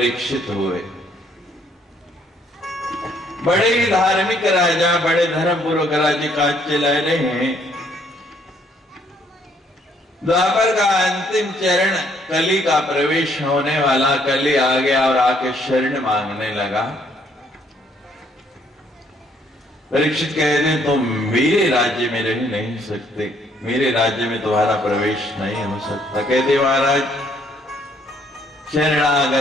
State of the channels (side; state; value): both; normal; correlation 0.67